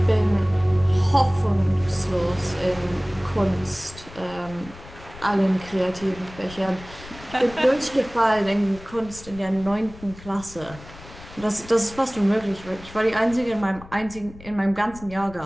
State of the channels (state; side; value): noise; left; rumble, 18 dB below the sound